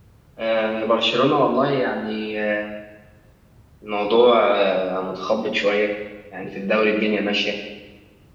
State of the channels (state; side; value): identical; both; correlation 1.00